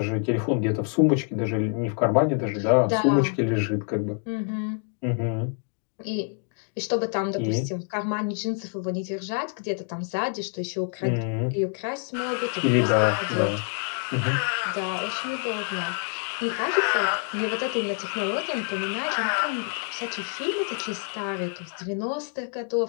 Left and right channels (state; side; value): quieter; right; 39.3 dB